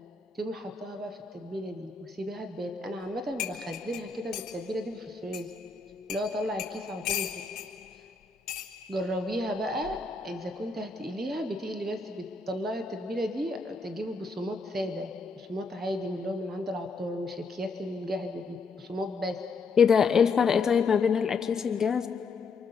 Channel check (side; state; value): right; quieter; 4.2 dB